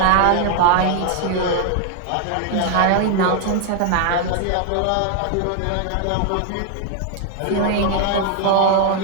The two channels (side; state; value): both; different; correlation 0.00